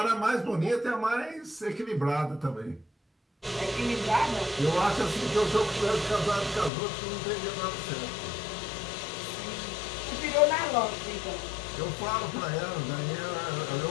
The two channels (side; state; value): right; drops out; at 6.7 s